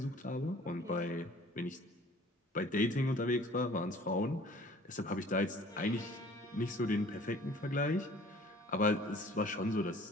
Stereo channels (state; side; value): normal; both; correlation 0.51